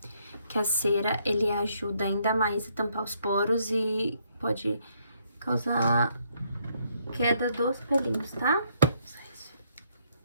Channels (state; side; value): inverted; both; correlation -0.71